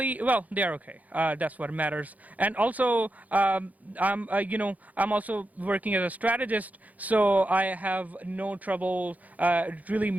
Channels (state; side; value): late; left; 0.077 ms